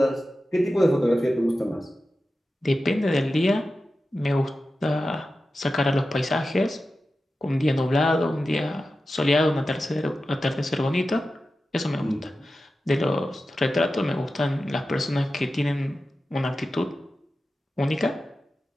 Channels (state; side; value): normal; both; correlation 0.93